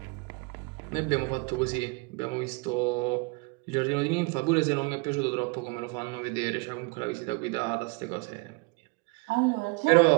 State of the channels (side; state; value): left; quieter; 28.7 dB